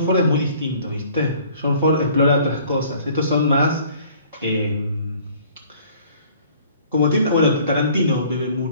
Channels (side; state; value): both; inverted; correlation -0.54